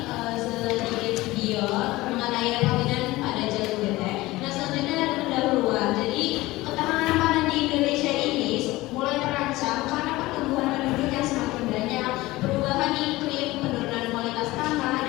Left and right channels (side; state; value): right; quieter; 19.1 dB